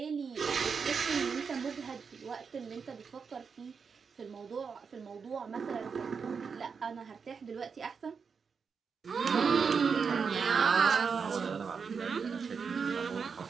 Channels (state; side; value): quieter; left; 5.8 dB